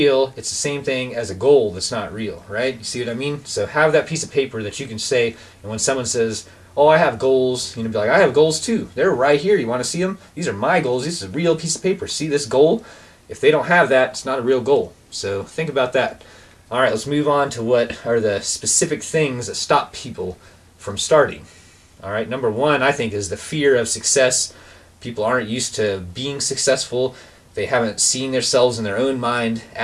it's the same thing as a goal that's not real, right? You see what I mean? So have that piece of paper that you can say, and when someone says, "Oh, I have goals," be like, "I have goals too. They're right here. You want to see them? These are my goals. This is a real piece of paper. See this goal?" If they don't have that, it's not a real goal. So think about that. All right, let's move on to what are the specific things that stop people from starting. All right, number 1, I think, is the fear of success. People aren't used to being successful. They haven't seen themselves in their own mind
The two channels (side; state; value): both; identical; correlation 1.00